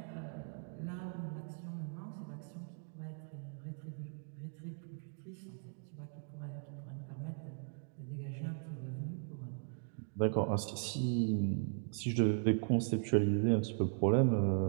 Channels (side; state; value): left; silent; 52 dB below the other